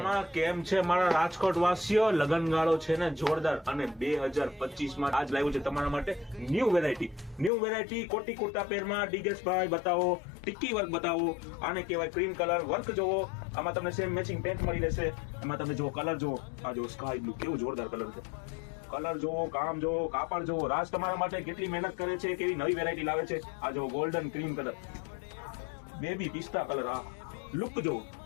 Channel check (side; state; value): right; drops out; at 7.5 s